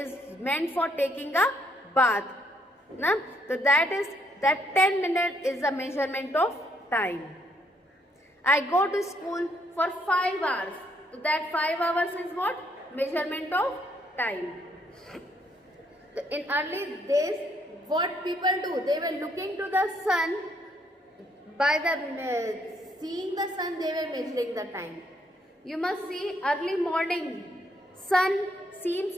meant for taking a bath. Na? So that 10 minutes is the measurement of time. I go to school for 5 hours. So that 5 hours is what? Measurement of time. So in early days, what people do? They were looking to the sun. By the seeing the sun, they were measuring the time. You must see early morning. Sun seems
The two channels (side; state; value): both; normal; correlation 0.71